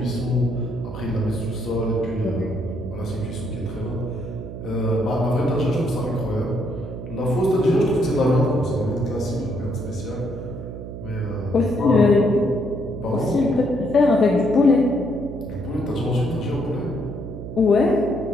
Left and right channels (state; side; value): noise; right; hum, 9 dB below the sound